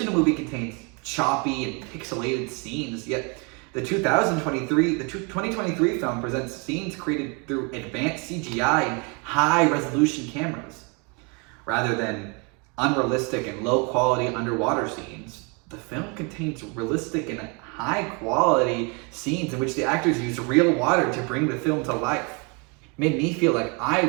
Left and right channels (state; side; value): quieter; left; 32.5 dB